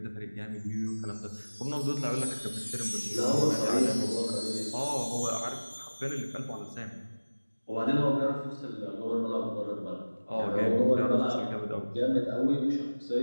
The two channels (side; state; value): both; inverted; correlation -1.00